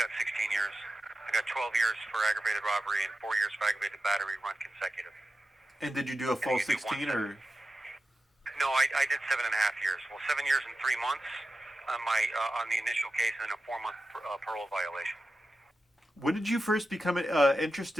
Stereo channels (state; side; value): normal; both; correlation 0.91